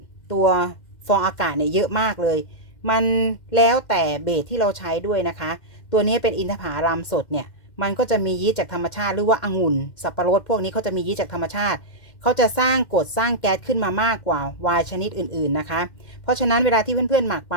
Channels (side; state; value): right; late; 2.1 ms